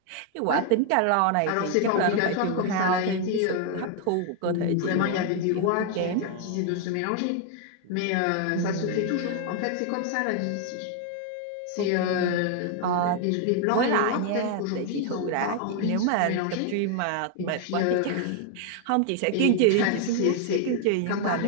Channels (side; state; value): both; different; correlation 0.00